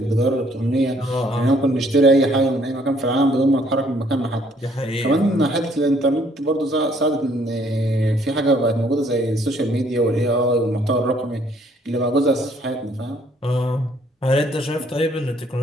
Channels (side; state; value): both; normal; correlation 0.64